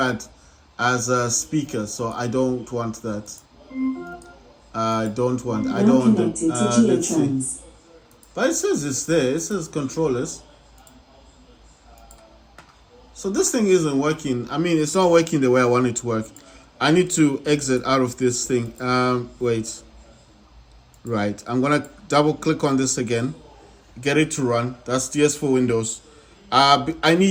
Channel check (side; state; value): both; identical; correlation 1.00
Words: as a speaker. So I don't want that. I don't want. I don't want it. Let's see. But it says it's there. It says controllers. So this thing isn't working. I mean, it's not working the way I want it to work. I need to exit out of this thing. Wait. Right. I'm gonna double click on this again. Get it to run. That's DS4 Windows. I